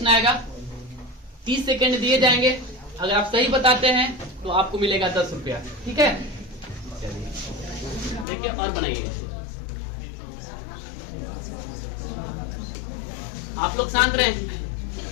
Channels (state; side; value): drops out; right; at 8.2 s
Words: आएगा, 30 सेकंड दिए जाएंगे। अगर आप सही बताते हैं तो आपको मिलेगा 10 रुपया, ठीक है? चलिए देखिए और बनाइए। आप लोग शांत रहें।